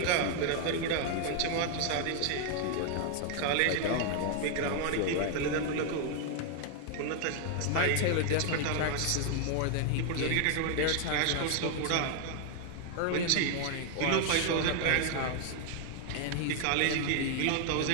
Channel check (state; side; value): different; both; correlation 0.00